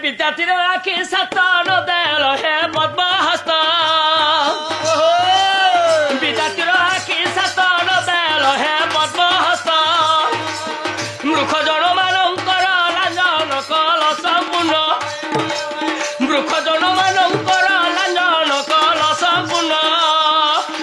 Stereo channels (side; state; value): both; identical; correlation 1.00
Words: विद्यार्थी आखि सतन देल हे पद्म हस्त विद्यार्थी आखि सतन देल हे पद्म हस्त मूर्ख जन मानकर लांजन कल संपूर्ण मूर्ख जन मानकर